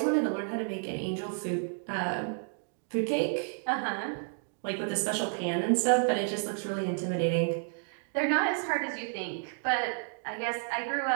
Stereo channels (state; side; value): silent; left; 57 dB below the other